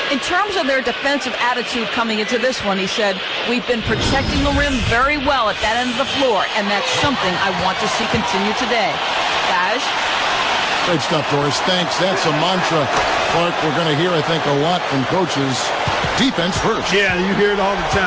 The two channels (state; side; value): identical; both; correlation 1.00